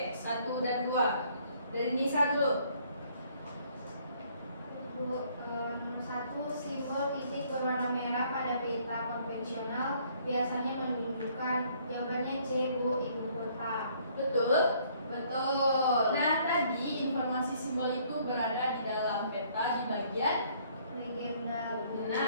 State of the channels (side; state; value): both; inverted; correlation -0.63